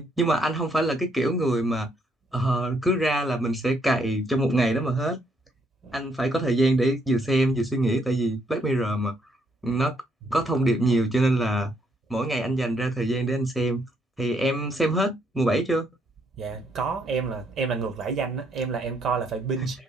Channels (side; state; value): both; normal; correlation 0.72